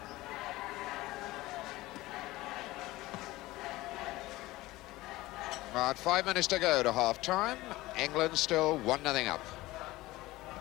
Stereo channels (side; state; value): right; quieter; 18.6 dB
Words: About 5 minutes to go to half-time. England still 1-0 up.